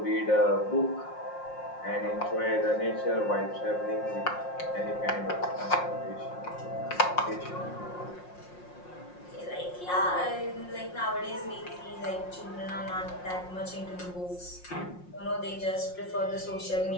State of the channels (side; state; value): right; late; 5.6 ms